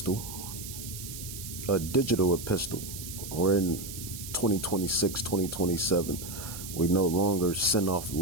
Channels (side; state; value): right; noise; hiss, 10 dB below the sound